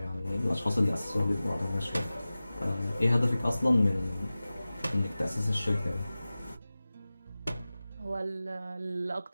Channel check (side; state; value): both; inverted; correlation -0.97